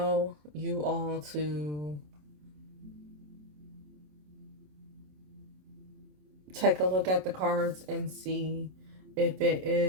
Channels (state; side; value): late; left; 27 ms